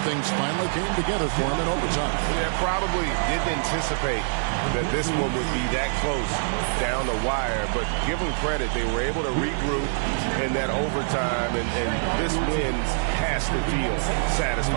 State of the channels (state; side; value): silent; left; 62 dB below the other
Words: things finally came together for them in overtime. Yeah, probably didn't anticipate that this one would be that close down the wire, but give them credit. They were able to regroup in that overtime, and this win has to feel